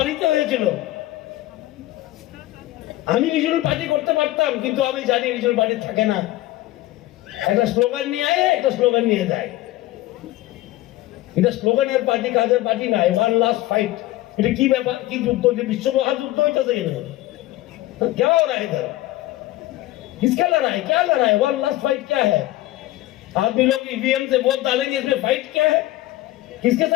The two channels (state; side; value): quieter; right; 16.5 dB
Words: হয়েছিল। আমি রিজনাল পার্টি করতে পারতাম, কিন্তু আমি জানি রিজনাল পার্টি থাকে না, একটা স্লোগান নিয়ে আয়, একটা স্লোগান নিয়ে যায়। এটা স্লোগানের পার্টি, কাজের পার্টি না। ওয়ান লাস্ট ফাইট, এটা কি ব্যাপার, কি যুদ্ধ, যে বিশ্ব মহাযুদ্ধ হইতেছে এখানে? क्या हो रहा है इधर? किसका लड़ाई, क्या लड़ाई? वन लास्ट फाइट क्या है? आदमी लोग ईवीएम से वोट डालेंगे, इसमें फाइट क्या है? किसके